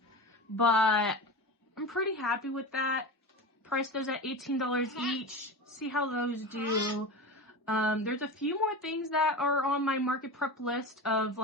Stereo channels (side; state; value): both; normal; correlation 0.27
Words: But I'm pretty happy with that. Price those at $18 each. See how those do. There's a few more things that are on my market prep list of